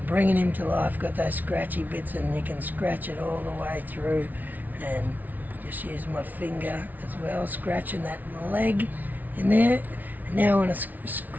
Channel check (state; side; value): late; left; 0.079 ms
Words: bringing him to life. Got those scratchy bits, and you can scratch it all the way through and Just use my finger as well, scratching that leg in there. And now I'm going to